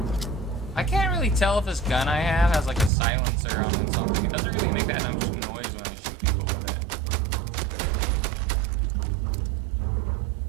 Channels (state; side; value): drops out; left; at 2.9 s